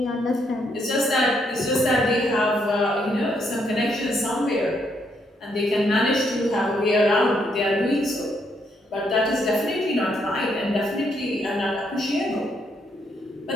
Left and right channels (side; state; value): both; normal; correlation 0.74